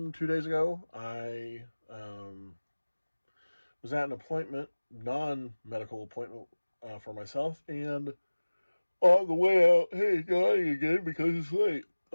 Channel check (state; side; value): inverted; both; correlation -1.00